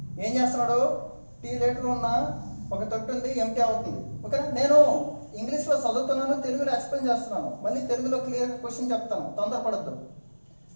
ఏం చేస్తున్నాడు, టీ లీటర్ ఉన్న ఒక తొట్టి ఉంది, ఎంటీ అవుతుంది. ఓకేనా, నేను ఇంగ్లీష్లో చదువుతున్నాను, తెలుగులో ఎక్స్ప్లెయిన్ చేస్తున్నాను. మళ్ళీ తెలుగులో క్లియర్గా క్వశ్చన్ చెప్తాను, తొందరపడద్దు.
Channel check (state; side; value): inverted; both; correlation -1.00